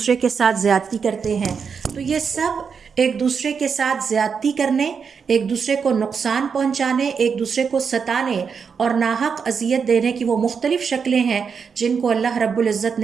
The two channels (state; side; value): quieter; left; 6.1 dB